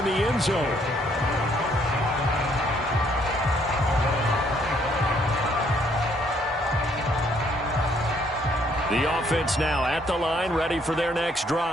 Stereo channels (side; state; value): both; normal; correlation 0.67